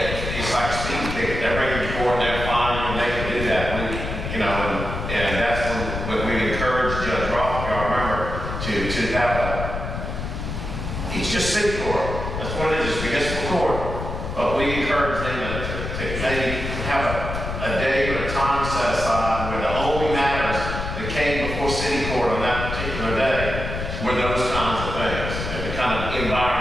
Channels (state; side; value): noise; left; rumble, 5 dB below the sound